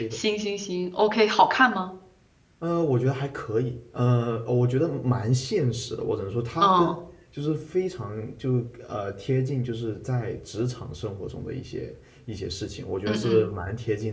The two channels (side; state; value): both; identical; correlation 1.00